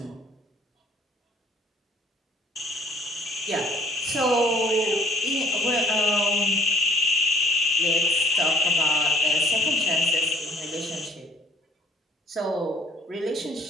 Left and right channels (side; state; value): both; normal; correlation 0.56